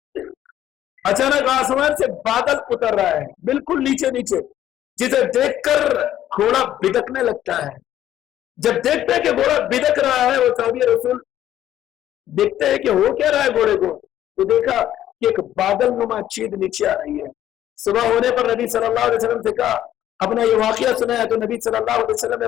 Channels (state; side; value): quieter; right; 12.1 dB